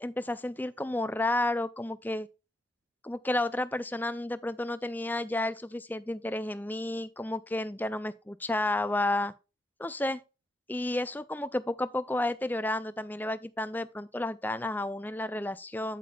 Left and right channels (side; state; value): both; normal; correlation 0.80